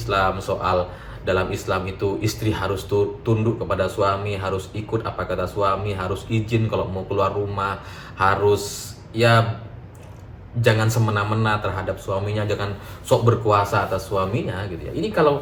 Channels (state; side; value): identical; both; correlation 1.00